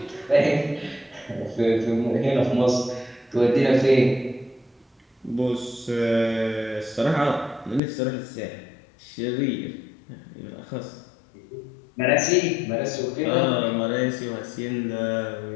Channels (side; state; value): right; drops out; at 7.8 s